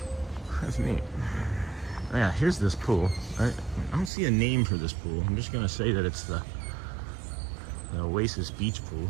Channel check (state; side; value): drops out; left; at 4.1 s